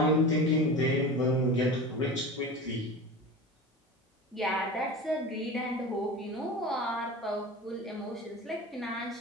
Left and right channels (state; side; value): normal; both; correlation 0.32